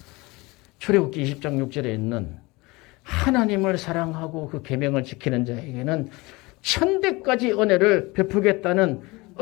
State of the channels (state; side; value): quieter; right; 23.5 dB